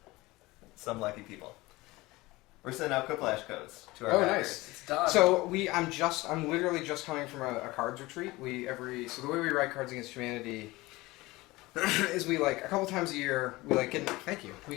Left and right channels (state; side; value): quieter; right; 20.6 dB